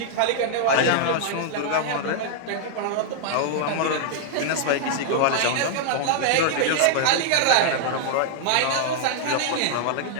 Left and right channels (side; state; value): both; different; correlation -0.01